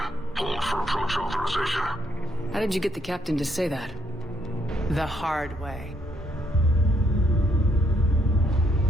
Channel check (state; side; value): normal; both; correlation 0.73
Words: Hold for approach authorization. How did you get the captain to say that? The hard way.